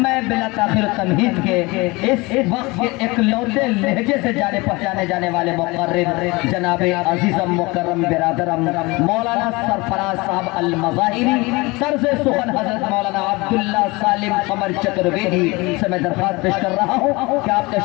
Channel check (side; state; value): right; quieter; 24.0 dB